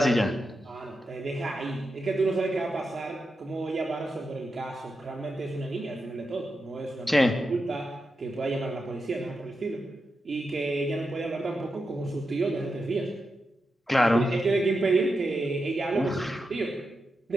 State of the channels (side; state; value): both; normal; correlation 0.88